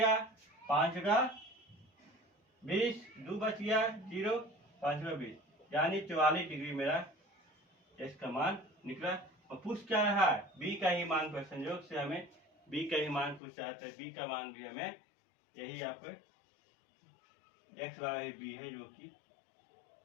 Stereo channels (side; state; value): right; drops out; at 13.4 s